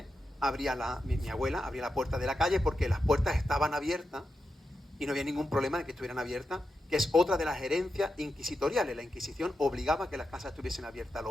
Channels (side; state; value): both; normal; correlation 0.88